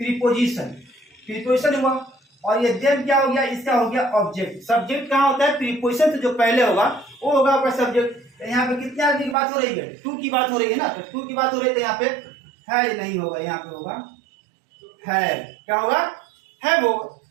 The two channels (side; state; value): left; drops out; at 9.3 s